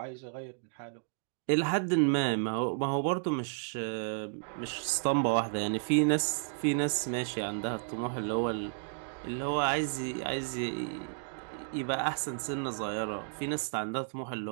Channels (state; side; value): silent; left; digital silence